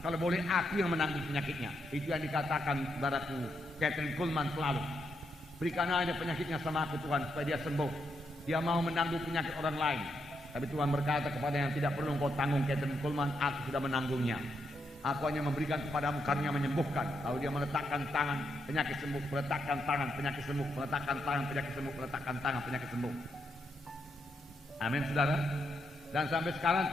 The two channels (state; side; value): normal; both; correlation 0.81